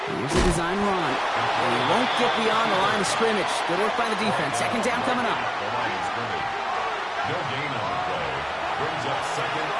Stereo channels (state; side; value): identical; both; correlation 1.00